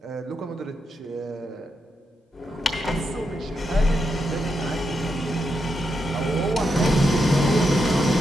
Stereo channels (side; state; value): both; normal; correlation 0.83